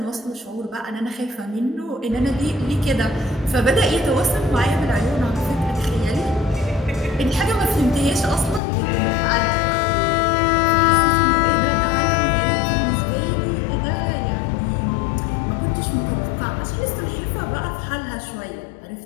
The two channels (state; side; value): drops out; right; at 8.6 s